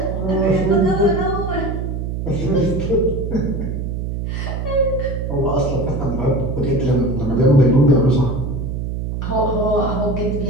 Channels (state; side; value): noise; right; hum, 3 dB below the sound